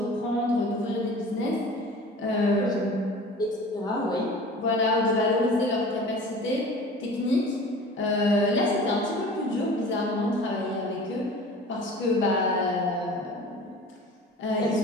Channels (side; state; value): both; normal; correlation 0.41